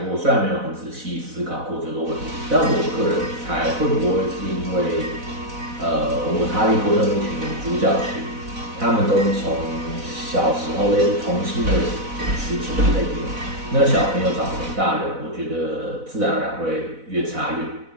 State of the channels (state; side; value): late; left; 4.0 ms